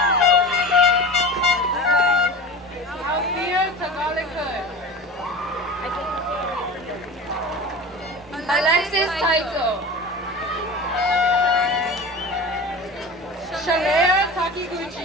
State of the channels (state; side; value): normal; both; correlation 0.33